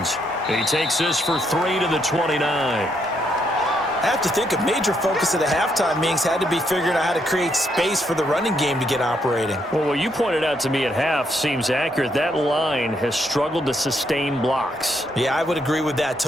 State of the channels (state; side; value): normal; both; correlation 0.75